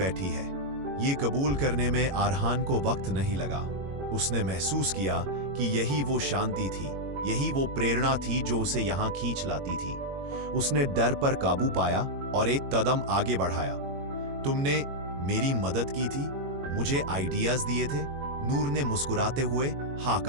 है। ये कबूल करने में आरहान को वक्त नहीं लगा। उसने महसूस किया कि यही वो शांति थी, यही वो प्रेरणा थी जो उसे यहां खींच लाती थी। उसने डर पर काबू पाया और एक कदम आगे बढ़ाया। तुमने मेरी मदद की थी, मुझे आइडियाज दिए थे। नूर ने मुस्कुराते हुए हाँ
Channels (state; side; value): late; left; 21 ms